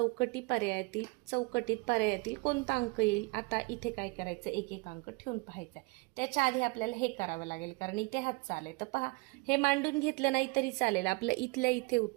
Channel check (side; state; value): left; quieter; 27.2 dB